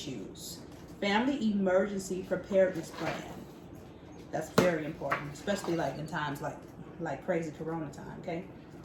family emergency preparedness plan. That's very important, especially like in times like crazy corona time. Okay.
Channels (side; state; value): both; identical; correlation 1.00